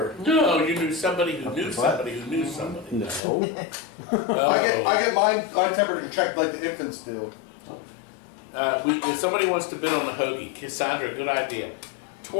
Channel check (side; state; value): right; drops out; at 3.2 s